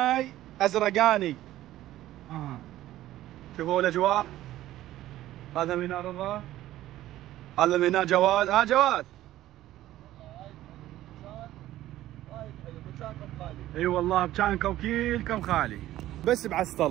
ازرقاني. شوفوا الاجواء. هذا ميناء رضا، هذا ميناء جواد. جواد اي والله بكانكم كلكم خالي بس بعست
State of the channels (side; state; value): left; quieter; 14.3 dB